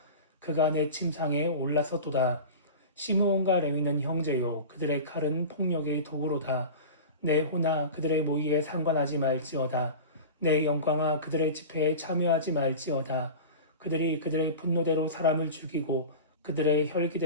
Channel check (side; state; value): both; inverted; correlation -0.31